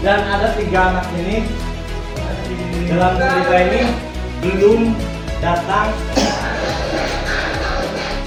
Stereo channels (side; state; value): both; identical; correlation 1.00